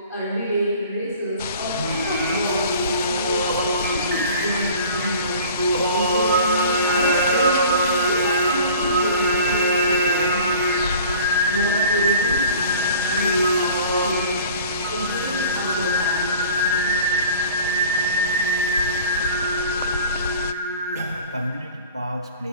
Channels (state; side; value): inverted; both; correlation -0.45